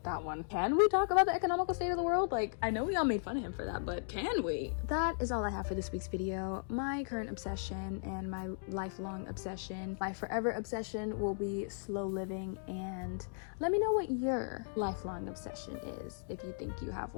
that one. Can we talk about the economical state of the world? Like, I know we all made fun of him for that, but can we? That is all I have for this week's video. My current obsession and my lifelong obsession, my forever obsession, will be slow living, and let me know what your lifelong obsession is if you think you have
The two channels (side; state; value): right; silent; digital silence